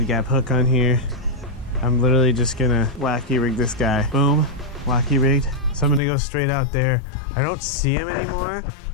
gap hook on here. I'm literally just gonna wacky rig this guy. Boom, wacky rigged. So I'm gonna go straight out there. I don't see him anymore.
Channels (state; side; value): drops out; right; at 6.0 s